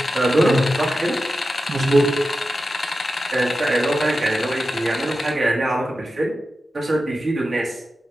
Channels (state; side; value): normal; both; correlation 0.92